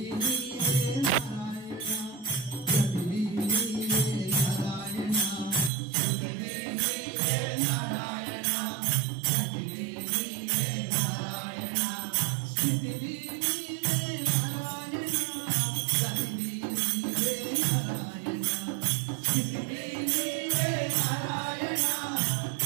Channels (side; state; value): left; drops out; at 5.7 s